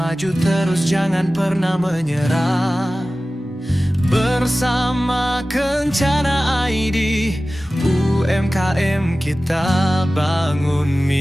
terus, jangan pernah menyerah. Bersama Kencana ID, UMKM kita bangun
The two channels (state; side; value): normal; both; correlation 0.96